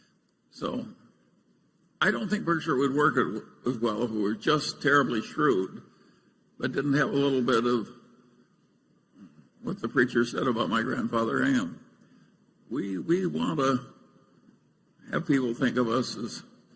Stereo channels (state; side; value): identical; both; correlation 1.00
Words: So I don't think Berkshire would work as well if we were just terribly shrewd, but didn't have a little bit of what the preacher said about my grandfather Ham. We want to have people think of us as